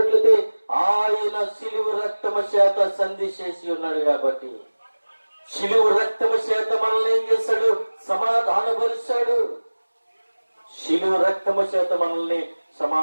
ఆయన శిలువ రక్తము చేత సంధి చేసి ఉన్నాడు కాబట్టి, శిలువ రక్తము చేత మనల్ని ఏం చేశాడు? సమాధానపరిచాడు. శిలువ రక్తము చేత మనల్ని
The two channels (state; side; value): inverted; both; correlation -1.00